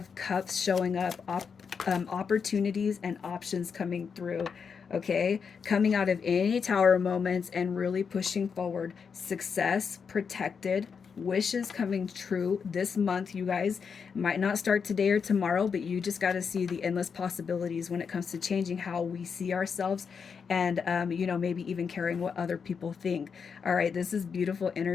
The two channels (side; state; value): right; quieter; 6.1 dB